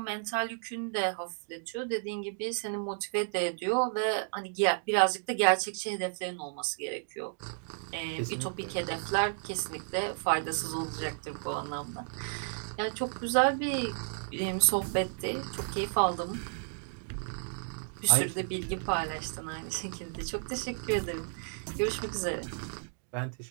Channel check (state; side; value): silent; left; digital silence